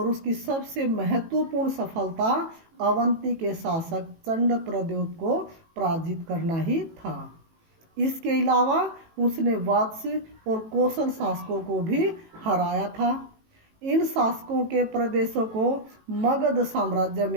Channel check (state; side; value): late; left; 18 ms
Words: उसकी सबसे महत्वपूर्ण सफलता अवंती के शासक चंड प्रद्योत को पराजित करना ही था। इसके अलावा उसने वत्स और कौशल शासकों को भी हराया था। इन शासकों के प्रदेशों को मगध साम्राज्य